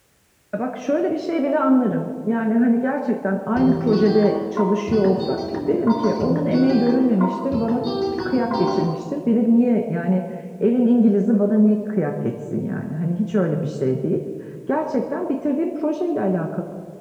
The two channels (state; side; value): identical; both; correlation 1.00